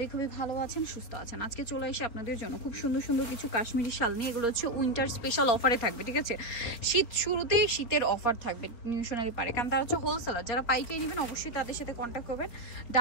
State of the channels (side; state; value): right; late; 4.2 ms